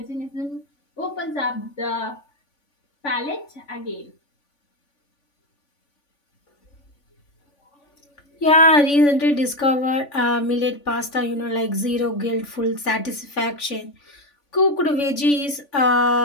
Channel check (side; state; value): right; late; 3.5 ms